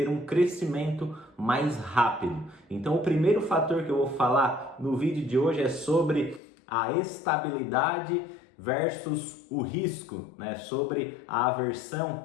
um crescimento mais rápido. Então, o primeiro fator que eu vou falar no vídeo de hoje é sobre a estabilidade versus o risco, né? Sobre a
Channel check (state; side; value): drops out; right; at 6.4 s